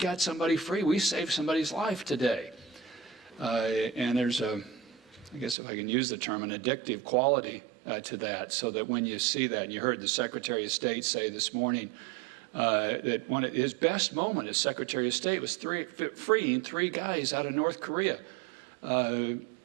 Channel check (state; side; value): drops out; left; at 5.6 s